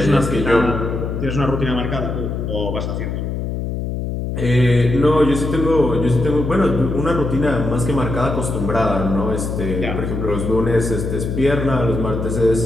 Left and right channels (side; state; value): left; noise; hum, 3 dB below the sound